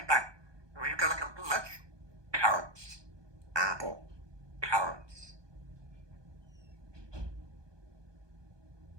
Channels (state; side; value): late; left; 1.2 ms